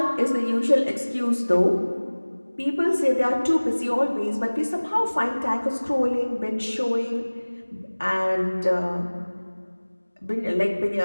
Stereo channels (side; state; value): both; inverted; correlation -1.00